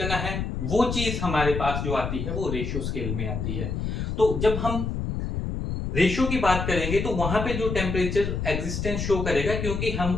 है वो चीज हमारे पास जो आती है वो रेशियो स्केल में आती है। तो जब हम रेशियो की बात करेंगे तो वहां पे जो टेम्परेचर एग्जिस्टेंस शो करेगा, क्योंकि हम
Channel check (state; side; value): noise; left; rumble, 3 dB below the sound